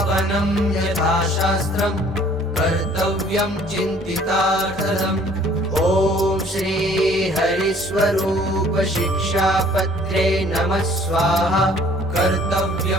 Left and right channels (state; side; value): normal; both; correlation 0.56